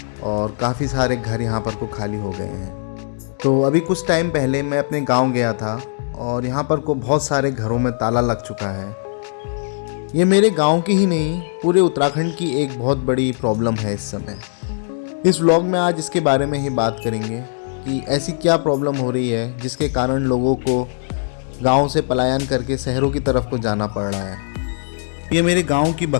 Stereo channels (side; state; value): right; silent; digital silence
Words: और काफ़ी सारे घर यहाँ पर को खाली हो गए हैं। तो अभी कुछ टाइम पहले मैं अपने गांव गया था और यहाँ पर को बहुत सारे घरों में ताला लग चुका है। ये मेरे गांव की ही नहीं, पूरे उत्तराखंड की एक बहुत बड़ी प्रॉब्लम है इस समय। इस व्लॉग में आज इसके बारे में ही बात करेंगे कि ऐसी क्या प्रॉब्लम हो रही है जिसके कारण लोगों को गांव से पलायन करके शहरों की तरफ को जाना पड़ रहा है। ये मेरे गांव की